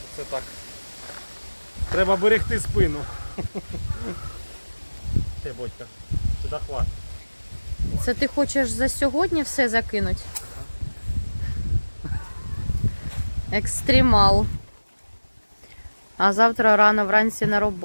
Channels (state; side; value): inverted; both; correlation -1.00